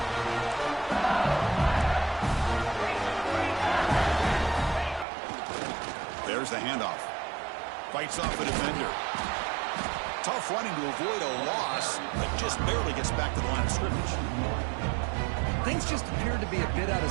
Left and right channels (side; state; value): left; drops out; at 5.1 s